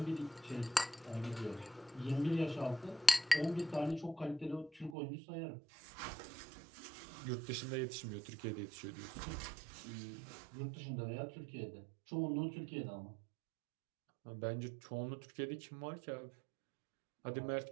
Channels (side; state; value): left; drops out; at 5.0 s